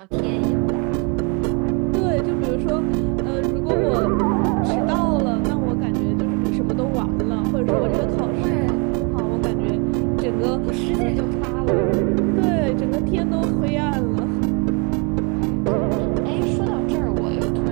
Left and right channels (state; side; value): quieter; left; 33.8 dB